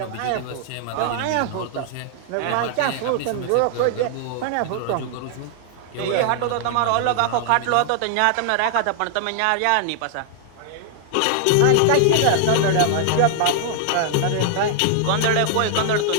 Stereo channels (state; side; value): different; both; correlation 0.00